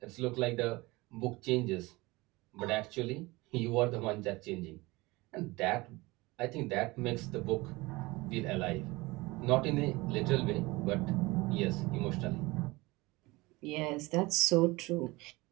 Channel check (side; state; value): left; quieter; 22.2 dB